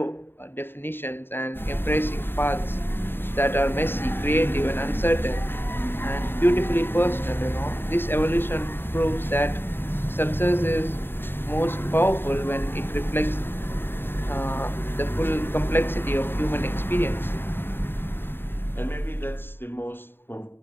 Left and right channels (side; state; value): right; late; 0.10 ms